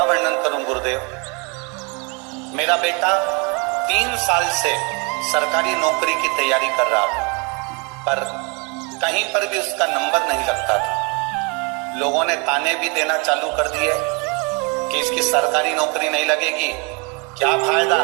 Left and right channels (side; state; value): left; quieter; 31.9 dB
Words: वर्णन करूं गुरुदेव। मेरा बेटा 3 साल से सरकारी नौकरी की तैयारी कर रहा था, पर कहीं पर भी उसका नंबर नहीं लगता था। लोगों ने ताने भी देना चालू कर दिए कि इसकी सरकारी नौकरी नहीं लगेगी, क्या फायदा